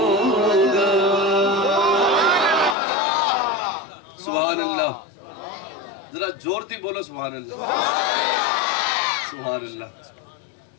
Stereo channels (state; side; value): drops out; right; at 2.8 s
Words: سبحان اللہ ذرا زور تھی بولو سبحان اللہ سبحان